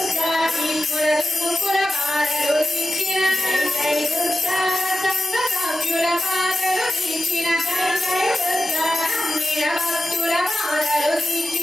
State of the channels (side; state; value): both; normal; correlation 0.93